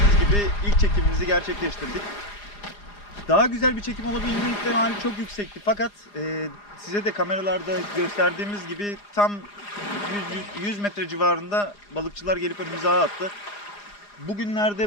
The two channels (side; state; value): right; late; 4.9 ms